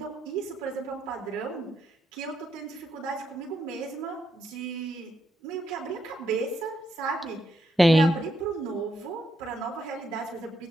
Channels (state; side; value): normal; both; correlation 0.79